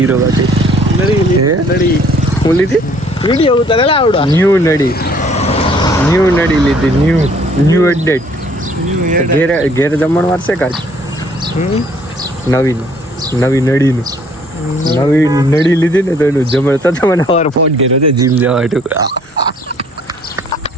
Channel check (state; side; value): normal; both; correlation 0.59